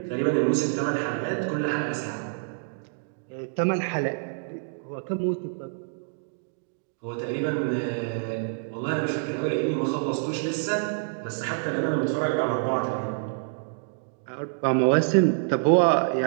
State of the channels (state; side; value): silent; left; digital silence